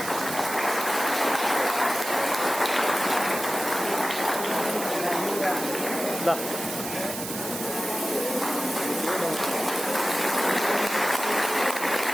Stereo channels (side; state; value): right; noise; hiss, 7 dB below the sound